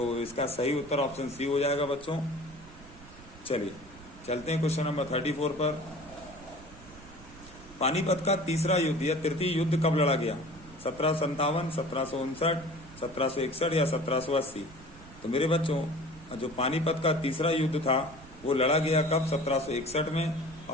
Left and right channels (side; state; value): right; noise; rumble, 19 dB below the sound